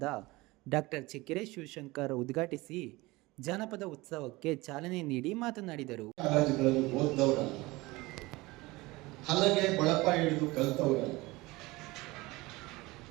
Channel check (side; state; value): left; quieter; 21.4 dB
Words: ಡಾಕ್ಟರ್ ಚೆಕ್ಕೆರೆ ಶಿವಶಂಕರ್ ಉದ್ಘಾಟಿಸಿ ಜಾನಪದ ಉತ್ಸವಕ್ಕೆ ಚಾಲನೆ ನೀಡಿ ಮಾತನಾಡಿದರು. ಹಲಗೆ ಬಳಪ ಹಿಡಿದು ಕಲ್ತವರಲ್ಲ,